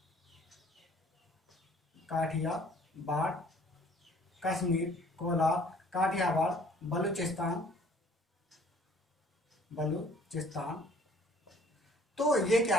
कश्मीर, कोलार, काठियावाड़, बलूचिस्तान। तो ये क्या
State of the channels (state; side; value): normal; both; correlation 0.56